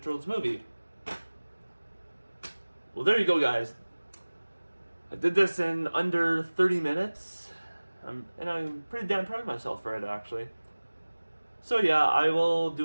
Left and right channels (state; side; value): inverted; both; correlation -1.00